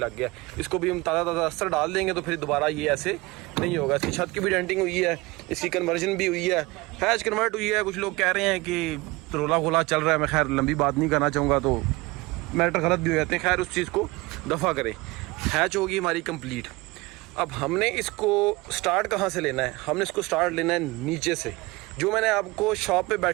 गया। इसको भी हम ताज़ा अस्तर डाल देंगे तो फिर दोबारा ये ऐसे नहीं होगा। इसकी छत की भी डेंटिंग हुई है, इसकी कन्वर्जन भी हुई है, हैच कन्वर्ट हुई है। कुछ लोग कह रहे हैं कि रोला गोला चल रहा है, मैं खैर लंबी बात नहीं करना चाहूँगा तो मैटर गलत भी हो जाते हैं। खैर उस चीज़ को दफ़ा करें। हैच होगी हमारी कंप्लीट। अब हमने इसको स्टार्ट कहाँ से लेना है? हमने इसको स्टार्ट लेना है नीचे से। जो मैंने आपको शॉप पे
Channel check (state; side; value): quieter; left; 22.3 dB